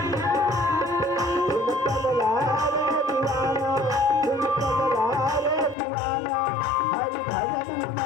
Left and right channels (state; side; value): drops out; right; at 5.8 s